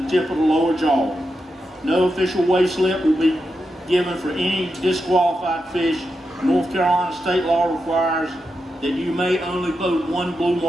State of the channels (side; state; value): both; normal; correlation 0.87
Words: the tip of the lower jaw. No official weigh slip will be given for any disqualified fish. North Carolina state law requires that you may only boat one blue